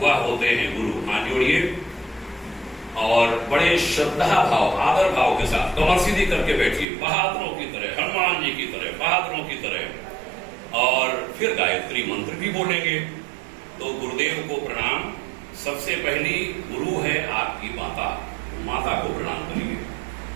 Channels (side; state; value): left; drops out; at 6.9 s